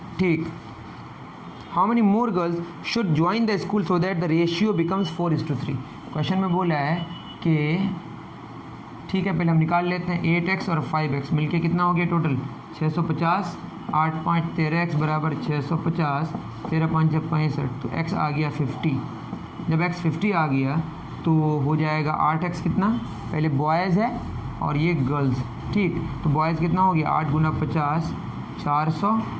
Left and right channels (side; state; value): both; identical; correlation 1.00